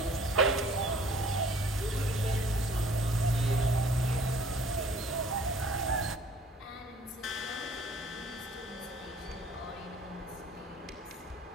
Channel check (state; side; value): normal; both; correlation 0.53